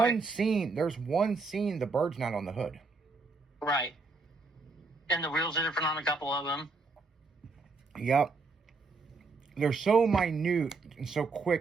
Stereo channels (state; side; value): quieter; left; 4.0 dB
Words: scene, the bird's not on the hood. Right. And the wheels are different on a couple of them. Yep. They're so minute and so